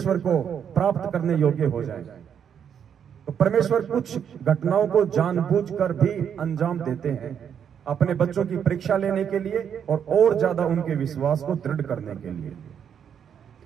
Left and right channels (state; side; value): quieter; left; 8.2 dB